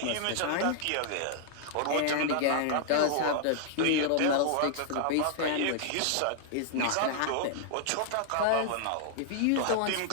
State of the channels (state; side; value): different; both; correlation -0.01